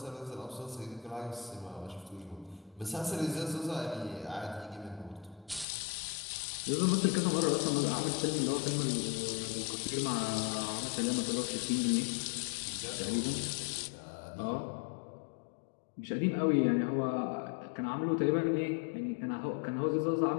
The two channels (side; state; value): right; drops out; at 5.7 s